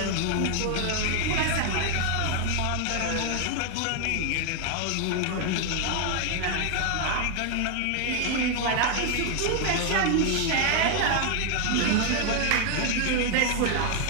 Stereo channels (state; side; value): different; both; correlation 0.00